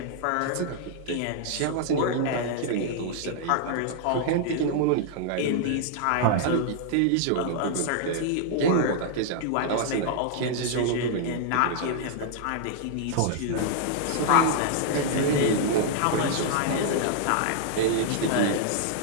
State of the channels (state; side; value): different; both; correlation -0.01